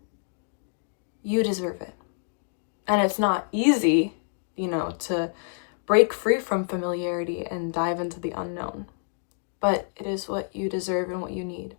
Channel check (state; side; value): silent; right; digital silence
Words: you deserve it. And it's not easy, to break free from familiarity and dive into the unknown, but it is what you deserve and what you need.